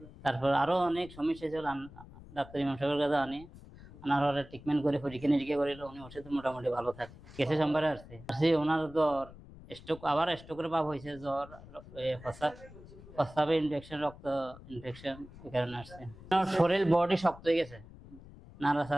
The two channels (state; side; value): noise; left; rumble, 18 dB below the sound